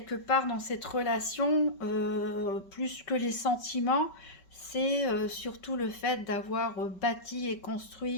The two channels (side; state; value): right; late; 5.2 ms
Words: part dans cette relation, plus que les sentiments, c'est surtout le fait d'avoir bâti et